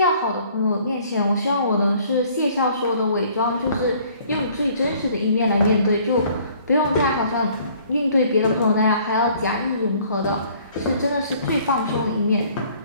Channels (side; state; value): both; inverted; correlation -0.57